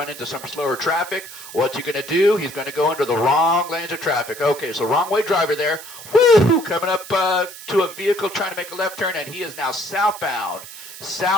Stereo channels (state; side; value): noise; right; hiss, 14 dB below the sound